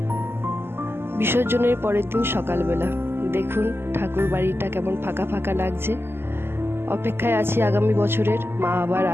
বিসর্জনের পরের দিন সকালবেলা দেখুন ঠাকুর বাড়িটা কেমন ফাঁকা ফাঁকা লাগছে। অপেক্ষায় আছি আগামী বছরের, মা আবার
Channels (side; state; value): left; late; 0.11 ms